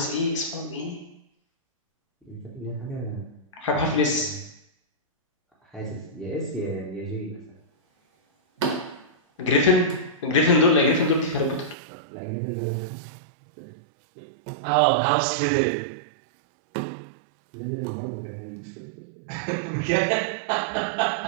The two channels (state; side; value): drops out; left; at 11.8 s